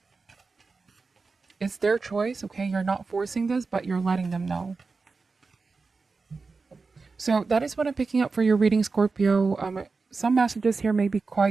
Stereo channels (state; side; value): quieter; left; 4.3 dB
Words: It's their choice, okay? You're not forcing this, but you're letting them know. So that is what I'm picking up for your reading, Scorpio. Some messages here may be